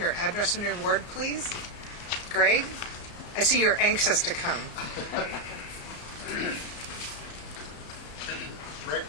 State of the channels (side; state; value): right; late; 34 ms